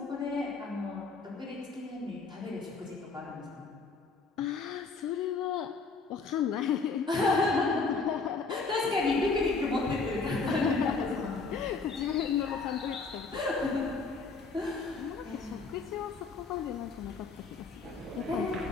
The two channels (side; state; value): right; quieter; 4.3 dB